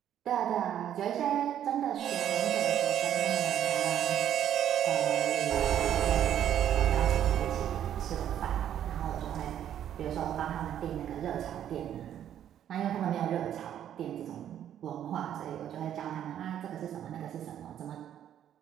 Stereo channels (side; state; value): left; quieter; 10.4 dB